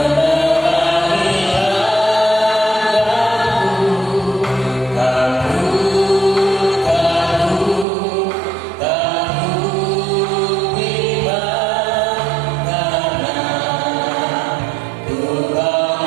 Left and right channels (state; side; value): drops out; left; at 7.9 s